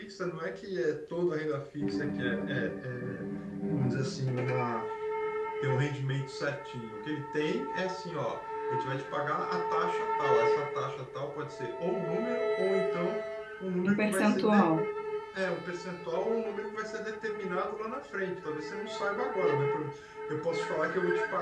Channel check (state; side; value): identical; both; correlation 1.00